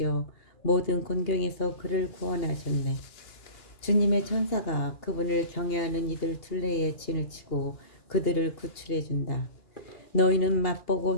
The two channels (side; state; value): right; late; 2.8 ms